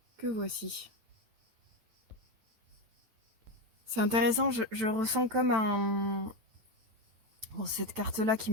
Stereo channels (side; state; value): left; late; 9.0 ms